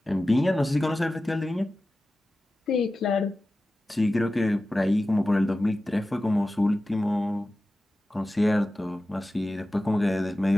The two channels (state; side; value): normal; both; correlation 0.95